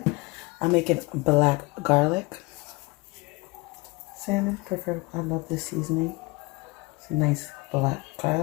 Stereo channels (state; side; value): quieter; right; 25.0 dB